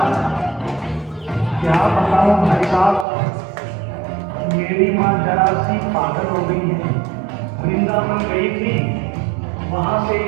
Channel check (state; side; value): drops out; left; at 3.1 s